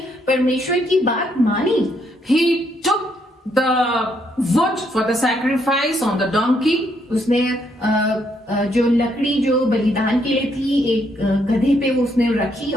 परमेश्वर की बात मानी। He took the wood for the sacrifice on the donkey. उसने जो लकड़ी जो बलिदान के लिए थी एक गधे पे वो उसने रखी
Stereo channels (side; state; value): both; normal; correlation 0.73